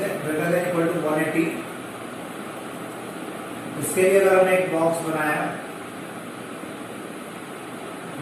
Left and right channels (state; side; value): identical; both; correlation 1.00